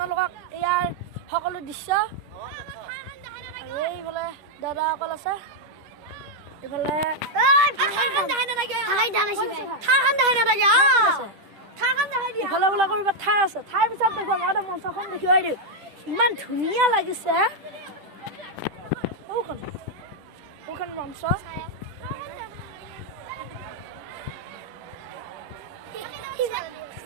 ইয়াৰ সকলো দৃশ্য আৰু এইফালে দাদাসকল আছে এইফালে ইফালে বোলা কৰিব ঠাই আছে ঠাইৰ পিছত দেখুৱাম আগতে মঞ্চখন দেখুৱাই দিওঁ ইমান ধুনীয়া লাগিছে ওখান মঞ্চ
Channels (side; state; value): left; late; 10 ms